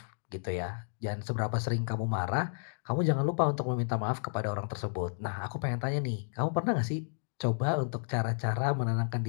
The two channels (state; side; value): silent; right; digital silence